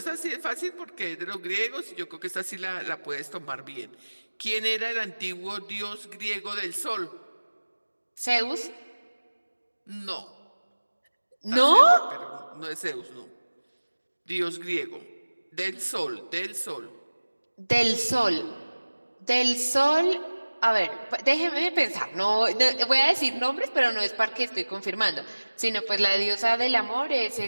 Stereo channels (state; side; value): inverted; both; correlation -1.00